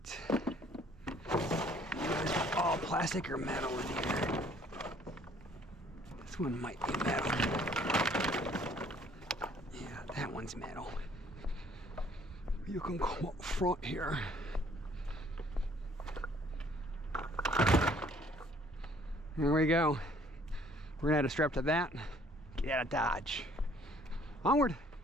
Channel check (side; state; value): both; normal; correlation 0.59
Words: It's all plastic or metal in here. This one might be metal. Yeah, that one's metal. You can come up front here. There we go. We're gonna add a strap to that. Get out of Dodge. Onward.